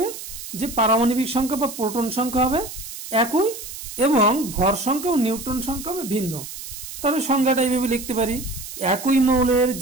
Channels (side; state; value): right; noise; hiss, 11 dB below the sound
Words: যে পারমাণবিক সংখ্যা বা প্রোটন সংখ্যা হবে একই, এবং ভর সংখ্যা ও নিউট্রন সংখ্যা হবে ভিন্ন। তাহলে সংজ্ঞাটা এইভাবে লিখতে পারি, একই মৌলের